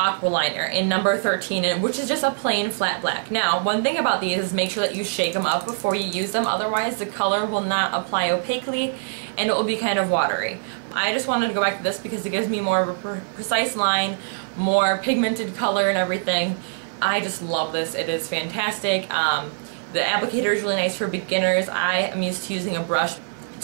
Liner in number 13, which is just a plain flat black. Now, one thing about these is make sure that you shake them up before you use them, otherwise the color will not apply opaquely and it will be kind of watery. I just wanted to go back to this because it gives me more of a precise line, more pigmented color and everything. I just love this. It is fantastic. The applicator is really nice for beginners. I am used to using a brush,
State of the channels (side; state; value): left; silent; digital silence